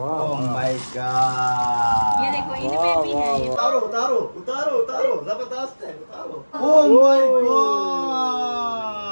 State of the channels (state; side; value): inverted; both; correlation -1.00